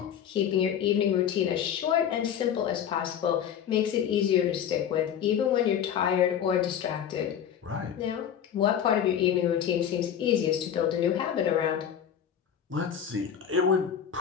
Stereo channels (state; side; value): quieter; right; 9.0 dB